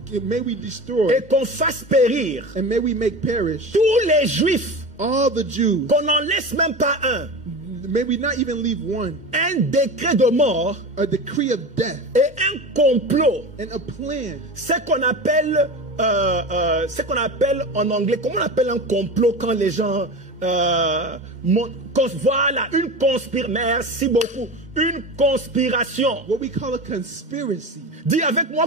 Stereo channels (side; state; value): left; late; 2.1 ms